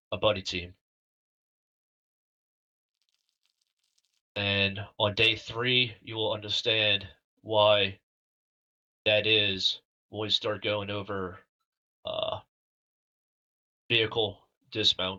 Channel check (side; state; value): both; identical; correlation 1.00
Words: a buddy team. And on day 3, you will understand why that is when we start going over vehicle